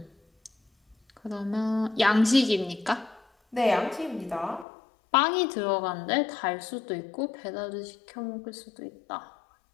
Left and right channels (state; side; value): drops out; right; at 4.7 s